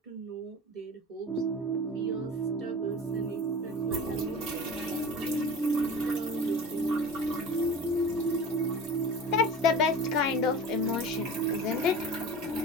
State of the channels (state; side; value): normal; both; correlation 0.36